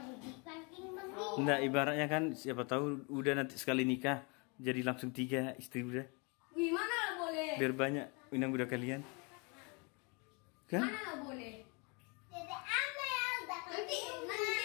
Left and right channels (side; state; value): right; quieter; 31.8 dB